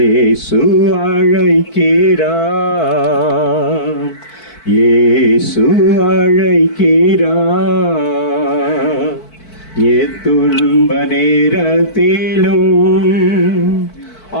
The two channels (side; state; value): right; late; 4.5 ms